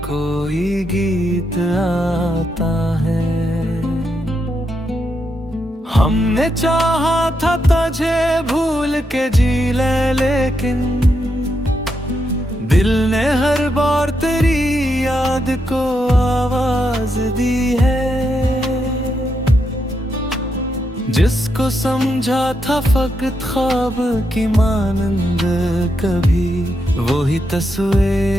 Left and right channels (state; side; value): normal; both; correlation 0.82